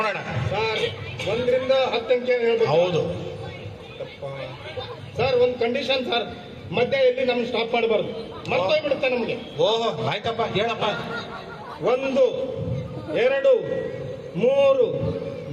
ಸರ್ 1ರಿಂದ 10 ಅಂಕೆ ಹೇಳ್ಬೇಕು. ಹೌದು. ಸರ್ ಒಂದು ಕಂಡೀಷನ್ ಸರ್, ಮಧ್ಯ ಎಲ್ಲಿ ನಮ್ಗೆ ಸ್ಟಾಪ್ ಮಾಡಬಾರ್ದು, ಮರ್ತೋಗ್ಬಿಡುತ್ತೆ ನಮಗೆ. ಓಹೋ, ಆಯ್ತಪ್ಪ, ಹೇಳಪ್ಪ. 1 2 3 4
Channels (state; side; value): identical; both; correlation 1.00